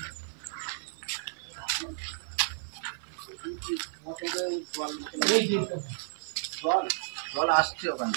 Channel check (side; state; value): left; silent; digital silence